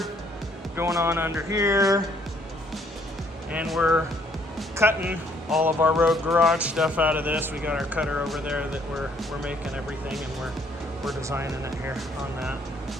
going on under here, and we're cutting all of our Road Garage stuff out of this. We got our cutter over there that we're making everything, and we're designing it here on that.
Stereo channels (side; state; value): both; normal; correlation 0.65